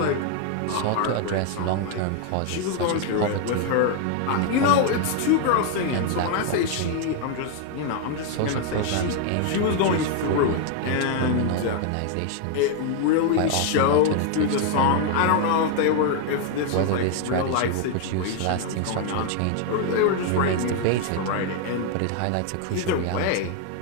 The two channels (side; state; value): both; different; correlation 0.00